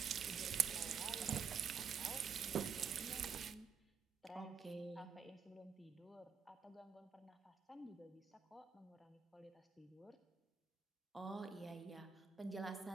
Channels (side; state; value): left; quieter; 6.5 dB